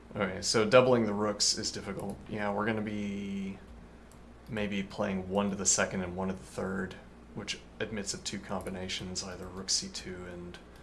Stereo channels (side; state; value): both; identical; correlation 1.00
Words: Okay, so doubling the rooks is difficult. Yeah, we're gonna be maybe playing one to the second and one to the third, which admits of two combinations, either rook c2 and